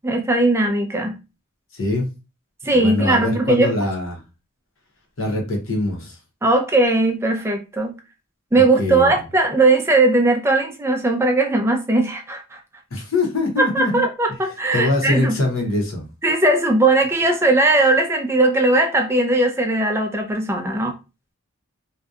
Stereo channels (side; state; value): both; normal; correlation 0.34